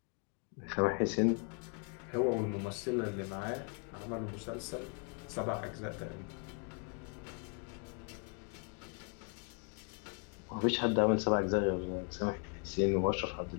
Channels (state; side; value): quieter; right; 38.6 dB